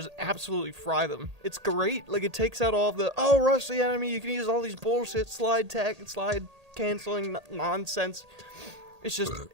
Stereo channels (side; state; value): left; late; 1.8 ms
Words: absolutely fry them. It's great. Like it takes out all of the rush the enemy. You can use all these bullshit slide canceling nonsense. It's just,